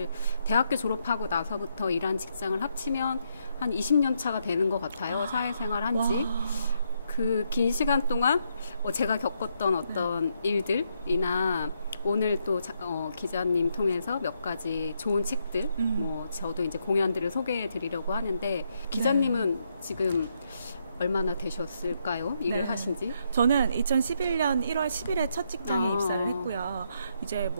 대학교 졸업하고 나서부터 일한 직장을 합치면 한 20년 차가 되는 것 같아요. 사회생활 한지. 그 긴 시간 동안 제가 겪었던 어떤 일들이나 오늘 또 기자님 통해서 몇 가지 좋은 책들, 저도 이제 공연들을 소개해 드리려고 하는데 기자님은 지금 얼마나 되셨을까요? 일을 하신지? 저는 2011년 1월 10일에 첫 직장에 입사를 했고요. 이제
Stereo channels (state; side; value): inverted; both; correlation -0.78